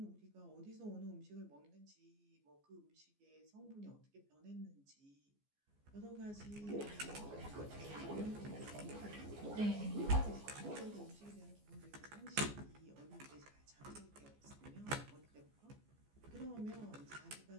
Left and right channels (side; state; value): left; late; 14 ms